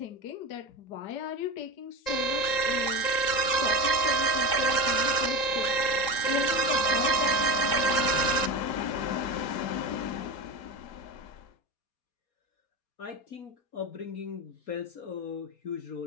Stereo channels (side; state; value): right; late; 3.8 ms